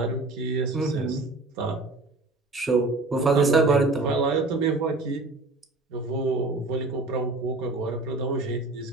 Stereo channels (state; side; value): quieter; left; 3.2 dB